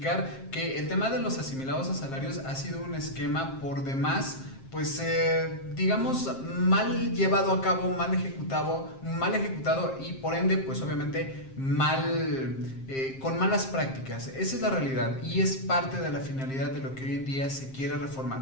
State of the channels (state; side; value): late; right; 7.5 ms